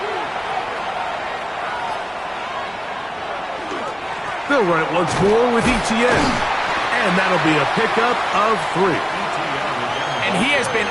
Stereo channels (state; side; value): identical; both; correlation 1.00